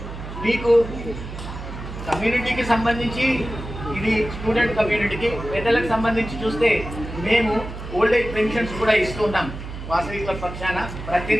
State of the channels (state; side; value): noise; right; hum, 10 dB below the sound